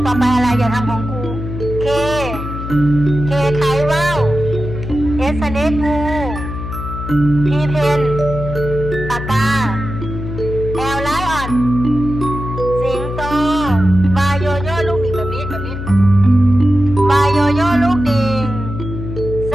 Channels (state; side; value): noise; left; hum, 7 dB below the sound